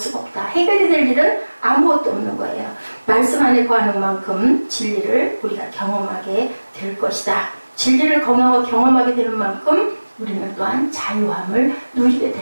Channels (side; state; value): both; inverted; correlation -1.00